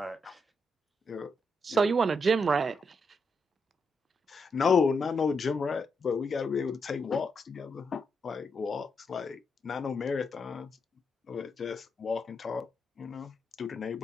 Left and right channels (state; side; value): normal; both; correlation 0.81